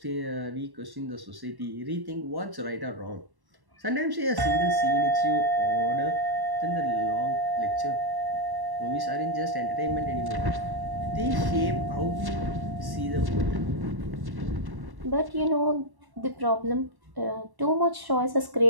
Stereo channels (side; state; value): left; late; 1.1 ms